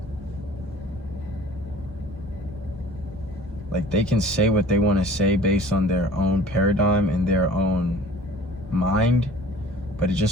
like, they can say what they want to say based on their own paradigm and their own mind, but it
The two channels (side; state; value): both; normal; correlation 0.47